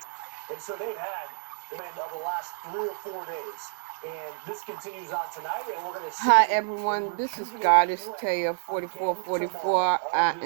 And so they've had the end of the last 3 or 4 days. And this continues on tonight, and we're going to see. Hi everyone, this is Goddess Taya 4444. I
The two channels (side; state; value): left; silent; digital silence